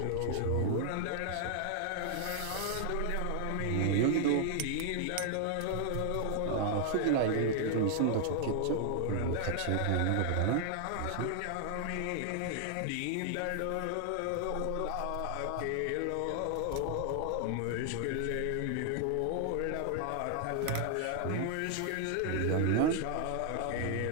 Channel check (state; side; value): different; both; correlation 0.00